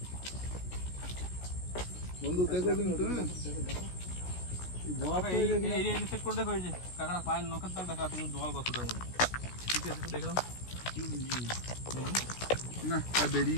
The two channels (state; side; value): late; right; 16 ms